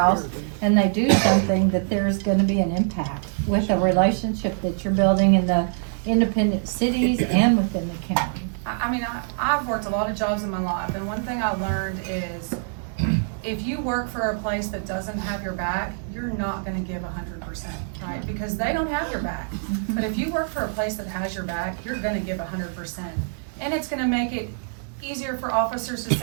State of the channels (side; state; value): left; silent; 62 dB below the other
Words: and they do something, that there's going to be an impact with a relationship that you're building in the independent cities and within the county. I mean, I've worked a lot of jobs in my life, and one thing I learned is if you work for a place that doesn't have your back, you're not gonna give 100%, right? Because they don't have your back. But if you work for a place that has your back, you're gonna give 100%. And it's gonna make it easier for officers to